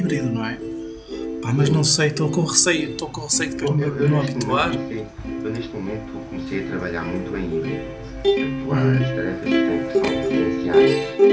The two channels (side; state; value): both; identical; correlation 1.00